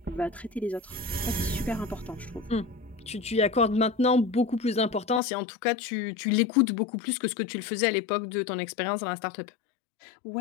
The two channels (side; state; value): right; drops out; at 5.2 s